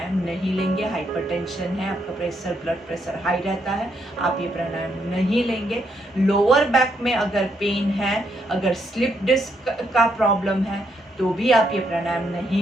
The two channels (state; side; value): normal; both; correlation 0.76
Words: नहीं लेंगे। हाइपरटेंशन है, आपका प्रेशर, ब्लड प्रेशर हाई रहता है, आप ये प्राणायाम नहीं लेंगे। लोअर बैक में अगर पेन है, अगर स्लिप डिस्क का प्रॉब्लम है तो भी आप ये प्राणायाम